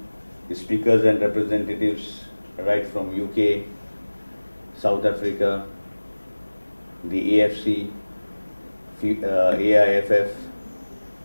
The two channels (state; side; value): inverted; both; correlation -1.00